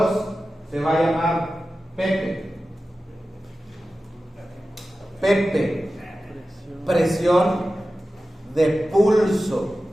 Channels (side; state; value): both; normal; correlation 0.94